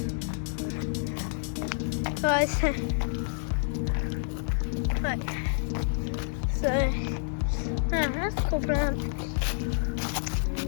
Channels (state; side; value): silent; right; digital silence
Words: Guys. Right. So, that's a cool plant.